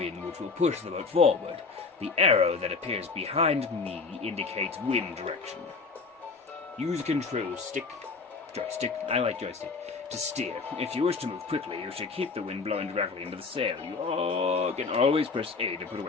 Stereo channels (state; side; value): quieter; right; 4.4 dB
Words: which will push the boat forward. The arrow that appears behind me indicates wind direction. Use control joystick, I like joystick, to steer. If you wish to move quickly, you should keep the wind blowing directly into the sail. You can always press A to put